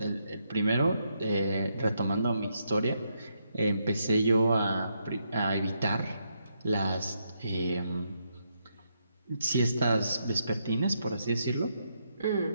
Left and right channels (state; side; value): inverted; both; correlation -0.79